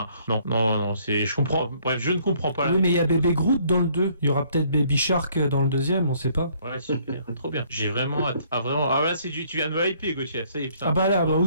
non, je comprends. Bref, je ne comprends pas. Oui, mais il y a Baby Groot dans le 2. Il y aura peut-être Baby Shark dans le deuxième, on sait pas. Ouais, super, trop bien. J'ai vraiment hâte. Là, tu viens de me hyper, Gauthier. Ça y est, putain. Ah bah là,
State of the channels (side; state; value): both; inverted; correlation -0.63